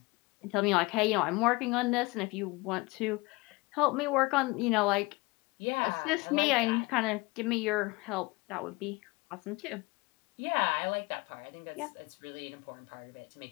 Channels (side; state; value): right; quieter; 24.2 dB